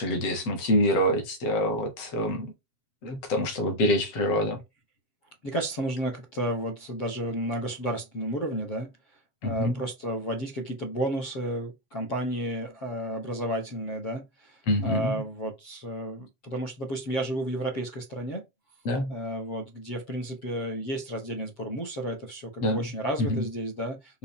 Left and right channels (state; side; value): late; right; 7.6 ms